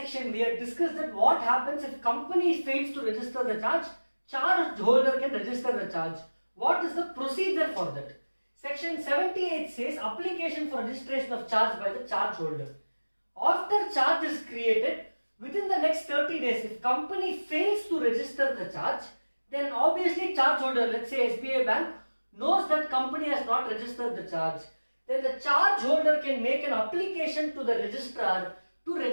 we had discussed that what happens if company fails to register the charge, charge holder can register the charge. What is the procedure for that? Section 78 says application for registration of charge by the charge holder. After charge is created, within the next 30 days, if company fails to register the charge, then obviously charge holder, let's say SBI Bank, knows that company has not registered the charge, then the charge holder can make an application to the registrar to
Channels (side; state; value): both; inverted; correlation -1.00